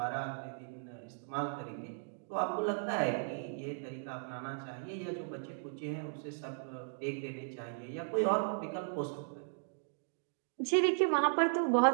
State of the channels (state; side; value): silent; left; digital silence